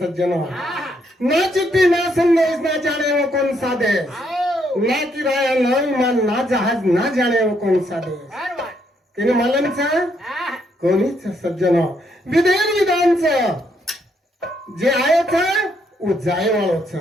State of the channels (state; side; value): normal; both; correlation 0.74